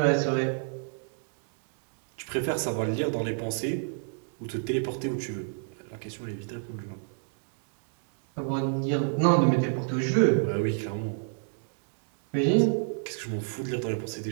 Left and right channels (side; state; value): left; silent; 58 dB below the other